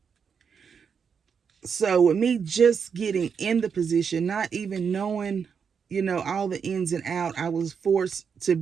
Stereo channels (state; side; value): quieter; left; 6.5 dB